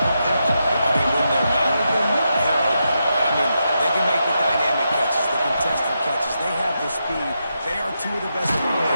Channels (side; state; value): both; inverted; correlation -0.85